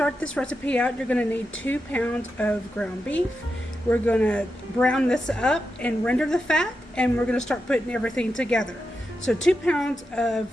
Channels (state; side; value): normal; both; correlation 0.88